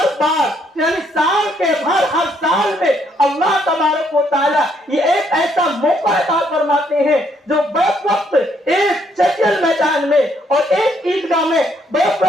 بار یعنی سال کے بھر ہر سال میں اللہ تبارک و تعالیٰ یہ ایک ایسا موقع عطا فرماتے ہیں جو بیک وقت ایک چچل میدان میں اور ایک عیدگاہ میں بیک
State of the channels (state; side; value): normal; both; correlation 0.70